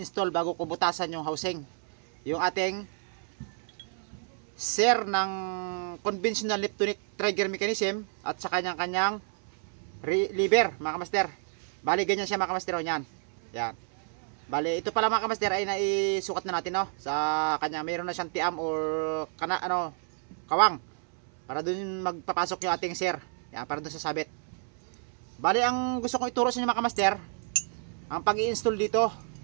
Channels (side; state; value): left; silent; 58 dB below the other